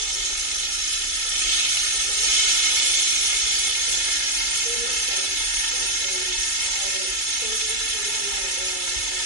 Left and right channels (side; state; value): right; late; 2.3 ms